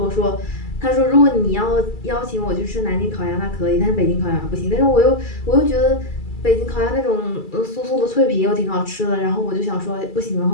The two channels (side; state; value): right; late; 2.3 ms